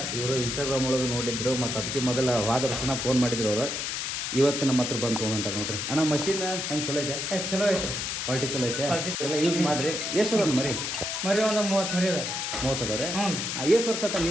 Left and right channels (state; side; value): noise; left; hiss, 2 dB below the sound